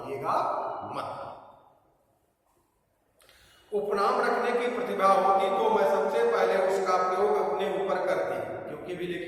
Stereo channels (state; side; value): identical; both; correlation 1.00